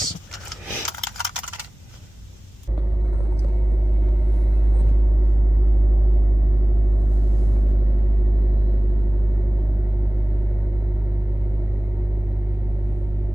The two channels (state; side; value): normal; both; correlation 0.98